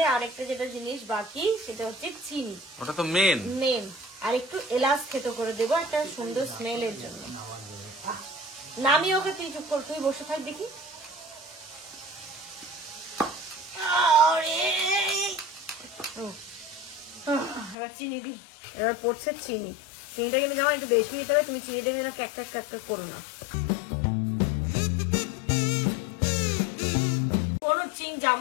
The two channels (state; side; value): drops out; right; at 17.8 s